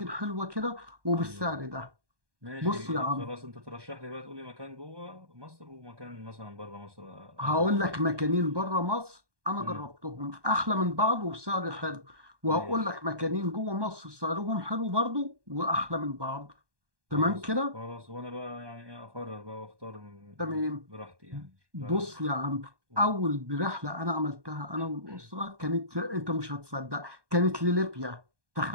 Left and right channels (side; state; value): left; late; 1.2 ms